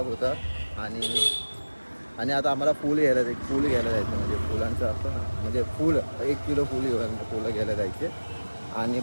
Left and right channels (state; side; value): inverted; both; correlation -1.00